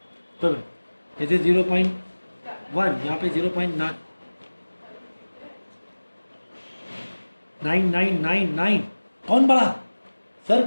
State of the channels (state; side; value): inverted; both; correlation -1.00